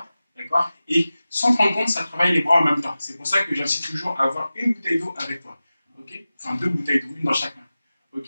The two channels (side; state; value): both; inverted; correlation -0.95